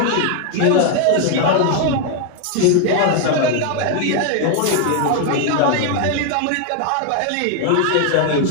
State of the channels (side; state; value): both; different; correlation 0.00